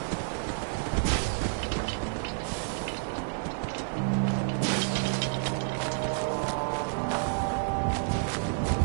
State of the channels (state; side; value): silent; left; 58 dB below the other